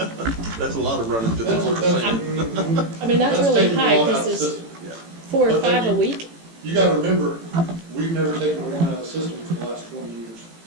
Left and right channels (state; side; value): late; left; 18 ms